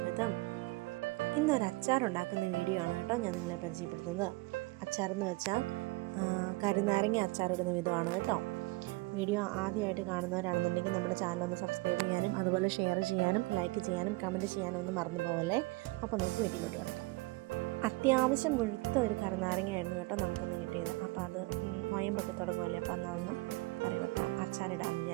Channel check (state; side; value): quieter; left; 23.1 dB